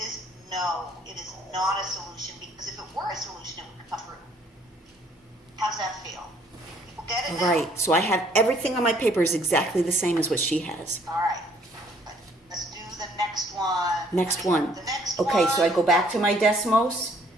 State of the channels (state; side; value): normal; both; correlation 0.62